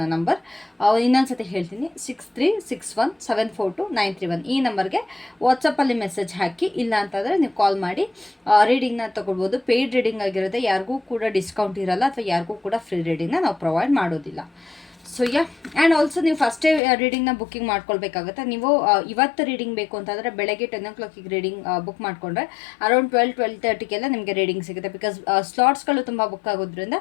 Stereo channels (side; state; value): right; drops out; at 16.8 s